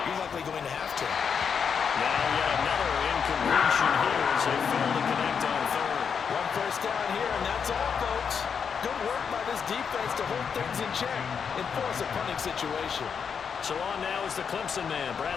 You're likely going to have to. Now yet another incompletion here as they fail to connect on 3rd. One 1st down here, and that's all, folks. Good work by this defense to hold things in check and force a punting situation. So on now is the Clemson man,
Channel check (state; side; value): quieter; right; 6.7 dB